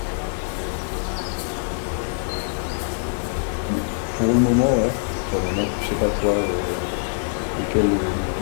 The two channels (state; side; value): silent; right; digital silence